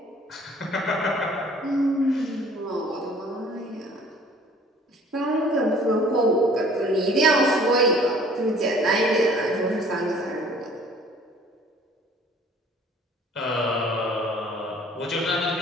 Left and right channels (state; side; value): normal; both; correlation 0.53